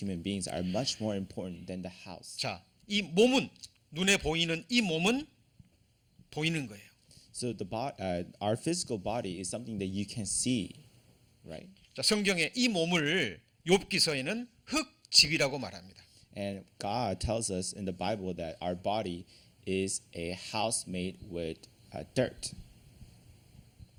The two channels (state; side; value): identical; both; correlation 1.00